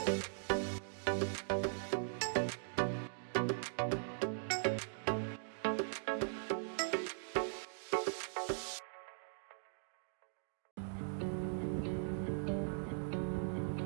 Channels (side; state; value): left; silent; digital silence